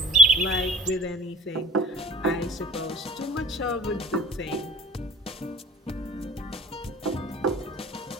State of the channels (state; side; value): normal; both; correlation 0.46